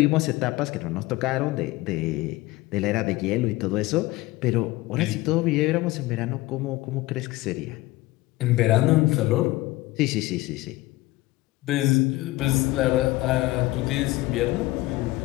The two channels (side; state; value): right; quieter; 19.3 dB